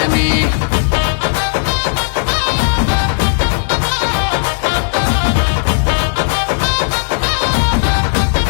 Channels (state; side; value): silent; right; digital silence